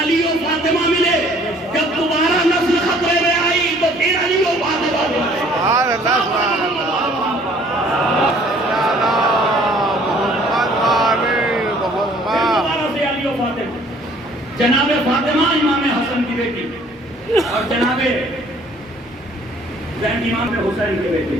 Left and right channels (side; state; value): both; normal; correlation 0.57